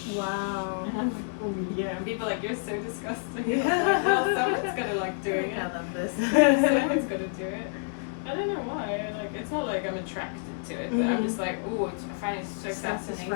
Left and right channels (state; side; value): silent; right; digital silence